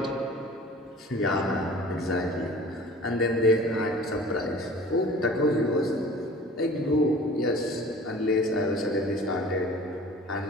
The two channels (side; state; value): both; normal; correlation 0.44